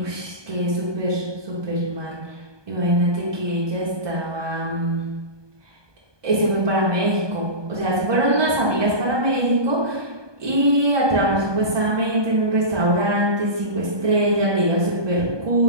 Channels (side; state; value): left; late; 1.2 ms